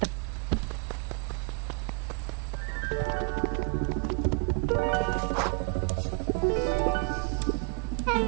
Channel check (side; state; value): left; quieter; 34.0 dB